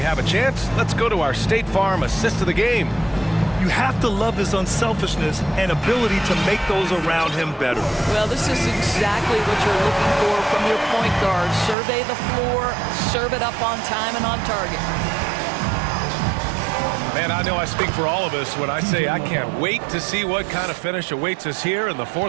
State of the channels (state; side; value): drops out; left; at 11.8 s